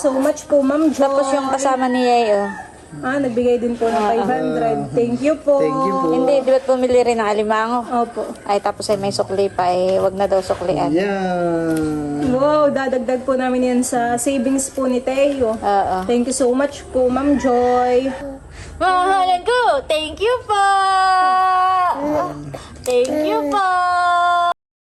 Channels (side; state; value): both; identical; correlation 1.00